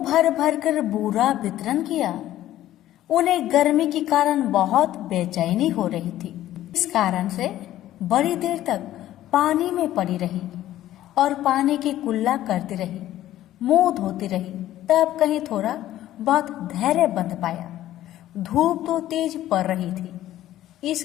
भर भर कर बूरा वितरण किया। उन्हें गर्मी के कारण बहुत बेचैनी हो रही थी। इस कारण से बड़ी देर तक पानी में पड़ी रही और पानी की कुल्ला करती रही, मुंह धोती रही। तब कहीं थोड़ा बहुत धैर्य बंध पाया। धूप तो तेज पड़ रही थी, इस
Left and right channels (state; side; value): quieter; right; 13.6 dB